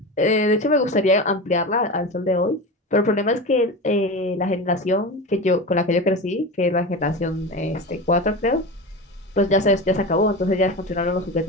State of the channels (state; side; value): normal; both; correlation 0.25